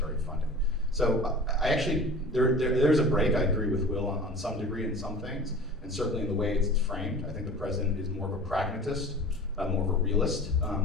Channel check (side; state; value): both; normal; correlation 0.39